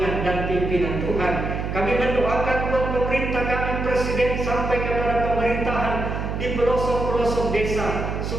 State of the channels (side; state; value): right; noise; hum, 3 dB below the sound